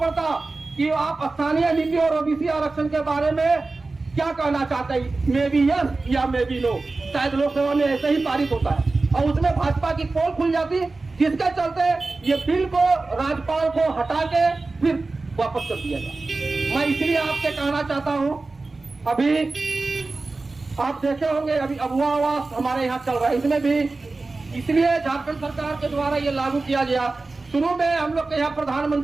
कि आप स्थानीय नीति और ओबीसी आरक्षण के बारे में क्या कहना चाहते हैं, मे बी यस या मे बी नो। शायद लोकसभा में ऐसे ही पारित होता है और उसमें भाजपा की पोल खुल जाती, जिसके चलते ये बिल को राज्यपाल को हटा के फिर वापस कर दिया जाए। मैं इसलिए आपसे कहना चाहता हूं, अभी आप देखे होंगे अभी अबुआ आवास हमारे यहाँ चल रहा है, इसमें भी इसलिए झारखंड सरकार के द्वारा ये लागू किया गया। शुरू में हम लोग के यहाँ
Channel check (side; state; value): left; quieter; 3.5 dB